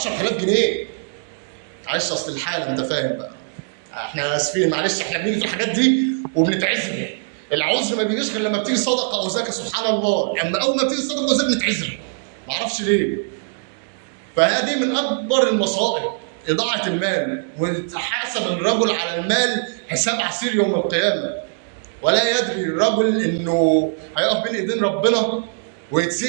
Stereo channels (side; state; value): left; silent; digital silence